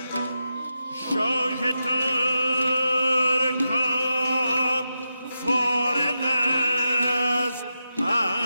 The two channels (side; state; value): both; inverted; correlation -0.88